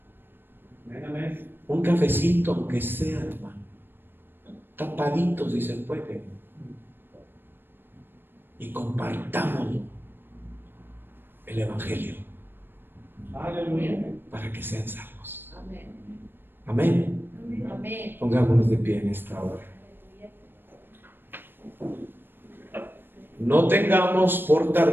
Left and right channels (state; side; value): late; left; 0.098 ms